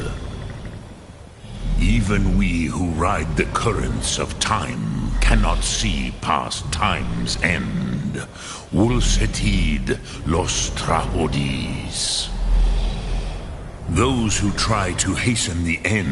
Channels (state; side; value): identical; both; correlation 1.00